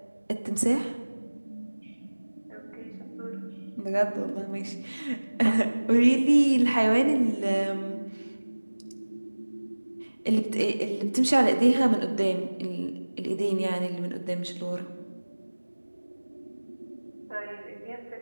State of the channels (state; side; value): inverted; both; correlation -1.00